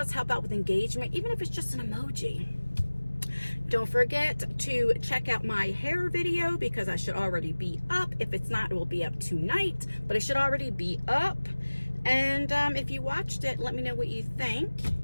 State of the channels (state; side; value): inverted; both; correlation -1.00